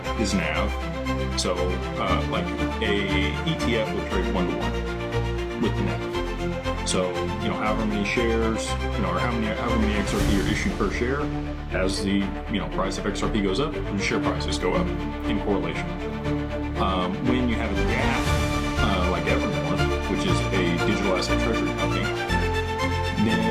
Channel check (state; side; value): identical; both; correlation 1.00